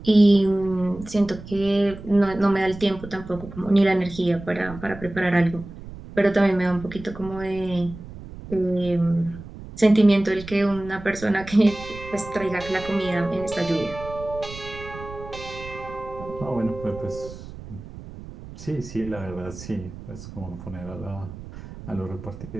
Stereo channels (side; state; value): right; noise; rumble, 14 dB below the sound